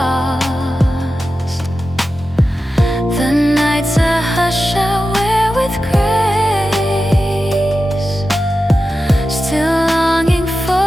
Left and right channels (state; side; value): normal; both; correlation 0.92